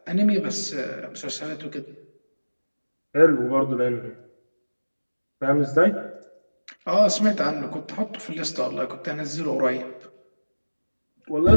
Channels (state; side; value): inverted; both; correlation -1.00